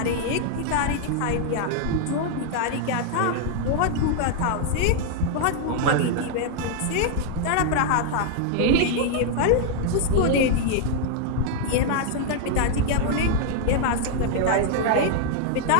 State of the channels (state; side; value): different; both; correlation 0.00